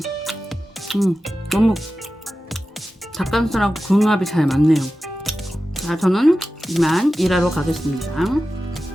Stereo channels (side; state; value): both; normal; correlation 0.94